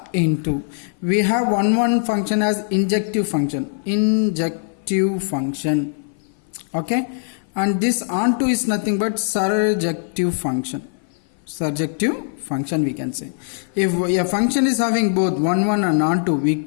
into. We have 1 1 function as injective function. Okay, and this onto is nothing but surjective function. Surjective function we can say. If a function is having both 1 1 and onto, we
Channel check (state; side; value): silent; right; 58 dB below the other